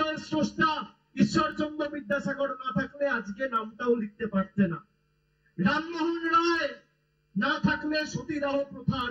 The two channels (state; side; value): identical; both; correlation 1.00